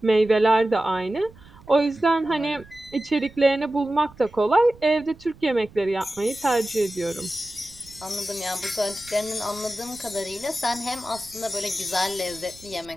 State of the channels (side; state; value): right; noise; rumble, 23 dB below the sound